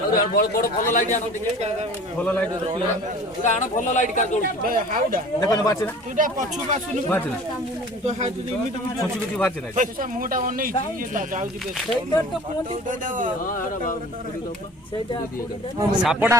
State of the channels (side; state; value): both; normal; correlation 0.43